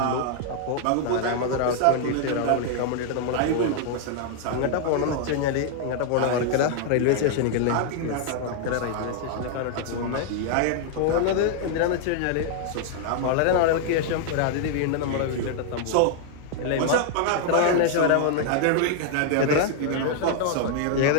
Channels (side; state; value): both; different; correlation 0.00